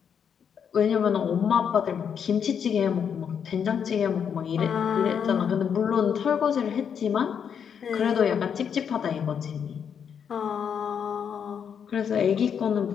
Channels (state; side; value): quieter; right; 7.6 dB